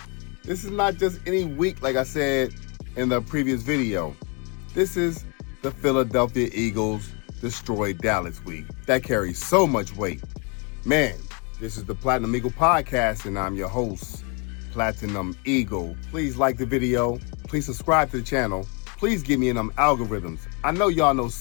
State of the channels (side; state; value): right; quieter; 33.1 dB